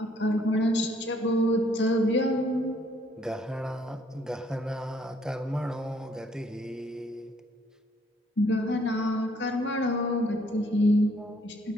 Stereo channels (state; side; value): normal; both; correlation 0.65